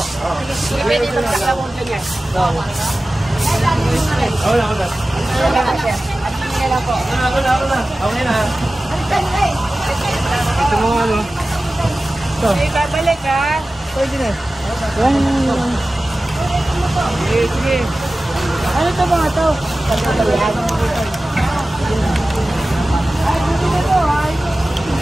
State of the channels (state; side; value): normal; both; correlation 0.96